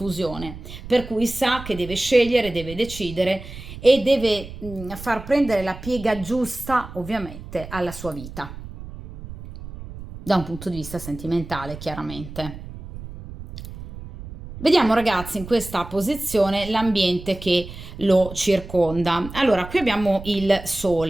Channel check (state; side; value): noise; right; rumble, 13 dB below the sound